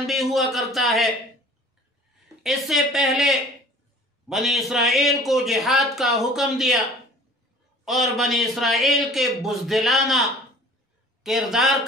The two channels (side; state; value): both; normal; correlation 0.47